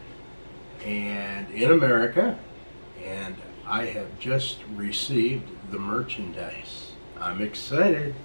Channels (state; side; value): inverted; both; correlation -1.00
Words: and in America, and I have just received the merchandise. I'm excited,